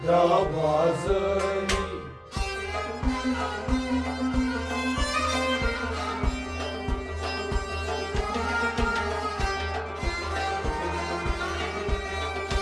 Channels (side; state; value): both; identical; correlation 1.00